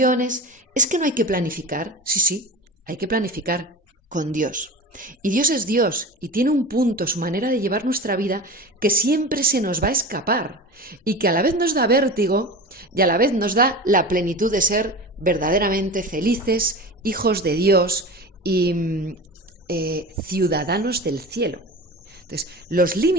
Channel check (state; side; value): normal; both; correlation 0.31